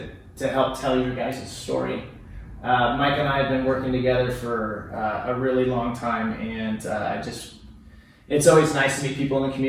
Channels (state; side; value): identical; both; correlation 1.00